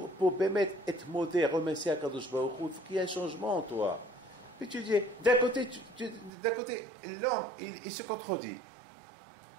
Bémet être modé, remercier à Kadosh Baruch Hu, il faut qu'il y ait un changement en toi. Puis tu dis, d'un côté, l'homme, il se contredit.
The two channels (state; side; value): drops out; left; at 6.3 s